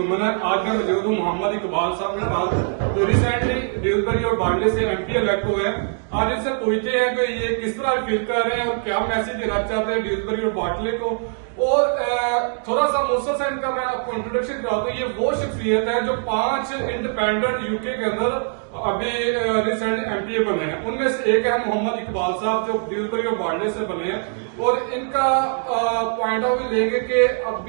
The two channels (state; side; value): silent; left; 64 dB below the other